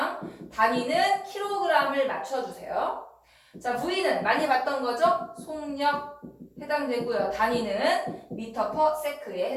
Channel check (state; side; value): identical; both; correlation 1.00